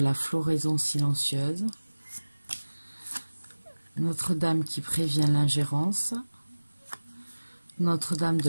floraison silencieuse, Notre-Dame qui prévient l'ingérence, Notre-Dame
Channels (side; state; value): both; inverted; correlation -1.00